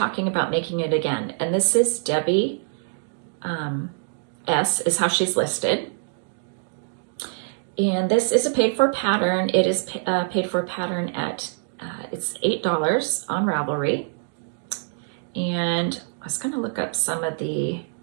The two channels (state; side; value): silent; left; digital silence